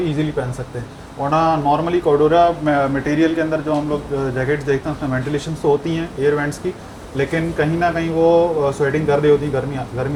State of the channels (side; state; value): both; identical; correlation 1.00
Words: इजीली पहन सकते हैं। वरना नॉर्मली कोडोरा मटेरियल के अंदर जो हम लोग जैकेट्स देखते हैं उसमें वेंटिलेशन तो होती हैं एयर वेंट्स की, लेकिन कहीं ना कहीं वो स्वेटिंग कर रही होती है,